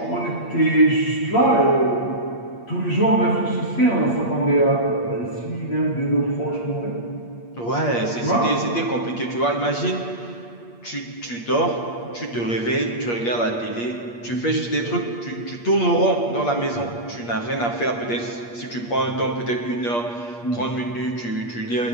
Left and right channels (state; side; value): late; right; 8.5 ms